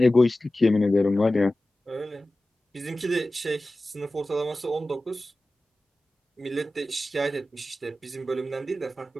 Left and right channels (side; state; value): both; normal; correlation 0.95